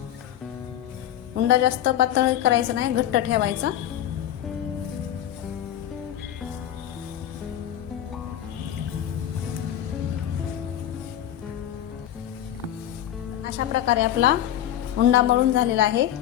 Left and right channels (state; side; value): quieter; right; 11.4 dB